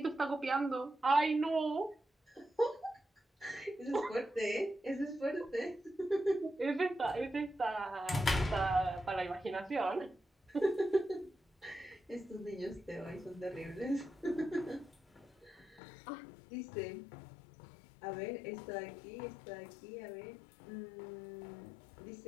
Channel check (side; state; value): right; drops out; at 15.8 s